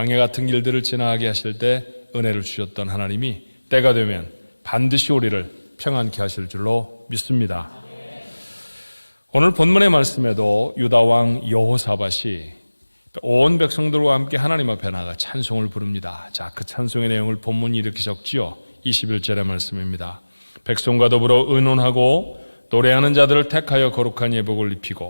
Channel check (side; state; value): both; inverted; correlation -1.00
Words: 같은 길들을 지나가게 하실 때 은혜를 주셨던 하나님이 때가 되면 반드시 우리를 평안케 하실 줄로 믿습니다. 오늘 본문의 말씀에도 유다왕 여호사밧이 온 백성들과 함께 하나님 앞에 나가 찬송을 부릅니다. 자, 그 찬송의 내용을 본문이 이렇게 적지요. 21절의 말씀입니다. 백성과 더불어 의논하고 노래하는 자들을 택하여 거룩한 예복을